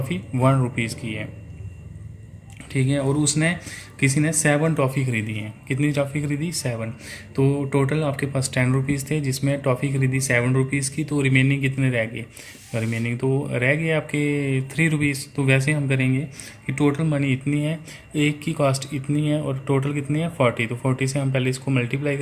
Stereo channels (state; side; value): identical; both; correlation 1.00